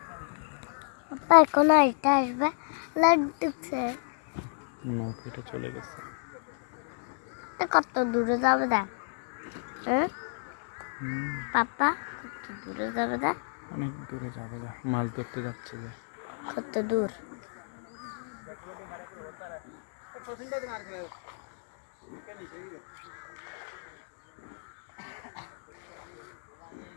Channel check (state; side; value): silent; right; digital silence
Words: এখন আইটা আসবে লাইট ঢুকছে নৌকাটা চলে গেছে কত দূরে যাবে দা হ্যাঁ পাপা কত দূরে যাবে দা অনেক দূরে যাবে যা মাছ ধরতে যাচ্ছে যে কত দূর